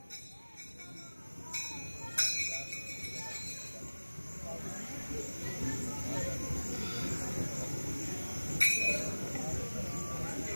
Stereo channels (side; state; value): both; inverted; correlation -1.00